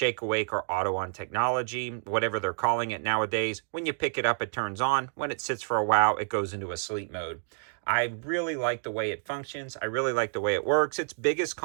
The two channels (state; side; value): silent; left; digital silence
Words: awake or auto on technology, whatever they're calling it nowadays. When you pick it up, it turns on. When it sits for a while, it goes into a sleep mode. I really like the way it functions. I really like the way it works. Its biggest